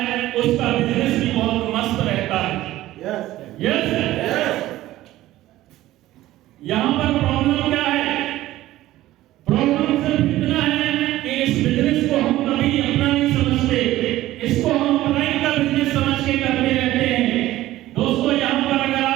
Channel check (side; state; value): left; quieter; 15.5 dB